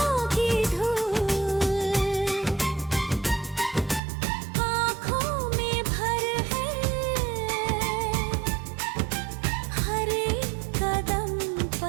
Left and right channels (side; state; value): left; drops out; at 4.0 s